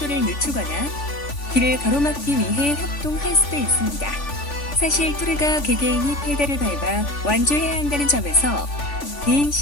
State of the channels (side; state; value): right; late; 3.5 ms